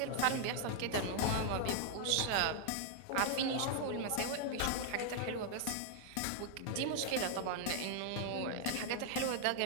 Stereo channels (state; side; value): different; both; correlation 0.00